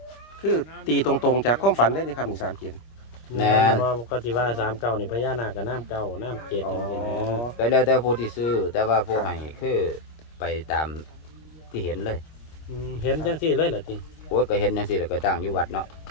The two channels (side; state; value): right; late; 25 ms